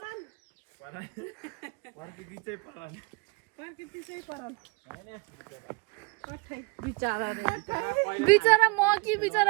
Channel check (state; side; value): quieter; left; 29.2 dB